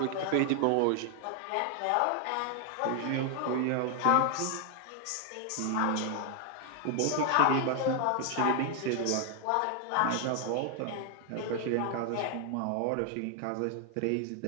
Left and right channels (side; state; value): both; different; correlation 0.00